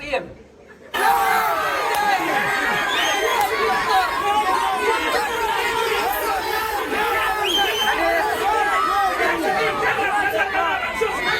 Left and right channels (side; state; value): both; identical; correlation 1.00